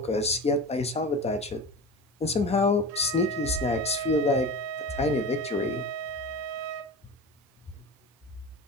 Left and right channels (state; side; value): normal; both; correlation 0.31